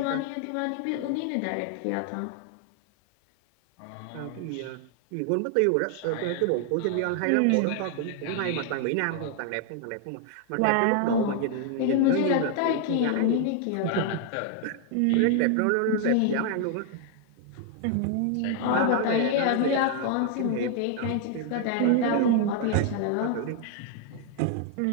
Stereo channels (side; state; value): both; different; correlation 0.00